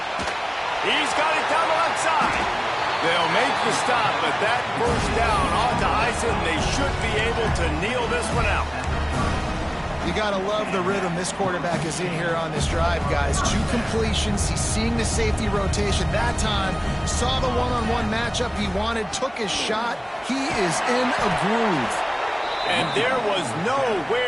He's got it down the left side. They'll make the stop, but that first down ought to ice it, and they should be able to kneel this one out. You got to love the rhythm this quarterback is in here on this drive, guys. 2 completions. He's seeing the safety rotation. That time, saw the one-on-one matchup he wanted, took his shot. He is in a groove. And there was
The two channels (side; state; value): both; identical; correlation 1.00